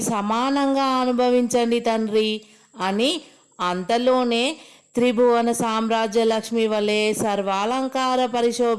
సమానంగా అనుభవించండి తండ్రి అని అంతలోనే త్రిభువన సామ్రాజ్య లక్ష్మి వలె సర్వాలంకార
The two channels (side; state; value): both; identical; correlation 1.00